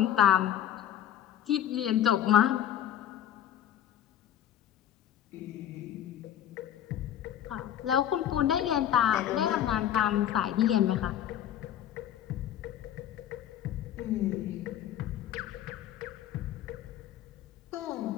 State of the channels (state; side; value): quieter; right; 10.9 dB